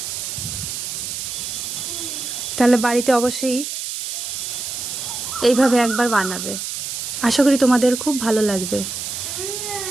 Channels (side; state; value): right; noise; hiss, 5 dB below the sound